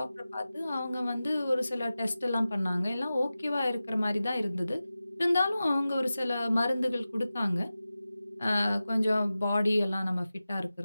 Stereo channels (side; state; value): both; inverted; correlation -0.95